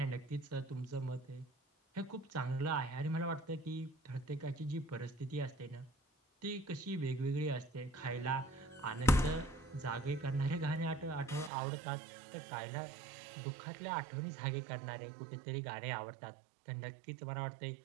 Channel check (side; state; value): left; drops out; at 11.5 s